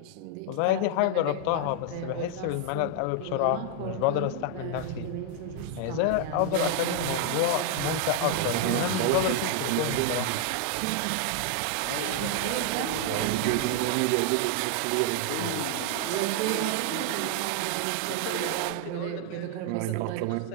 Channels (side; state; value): both; different; correlation 0.00